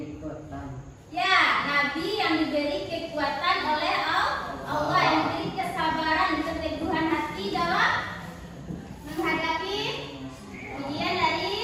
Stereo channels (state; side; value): identical; both; correlation 1.00